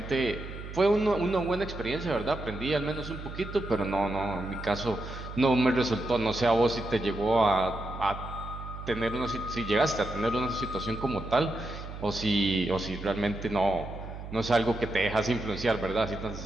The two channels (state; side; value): noise; right; hum, 10 dB below the sound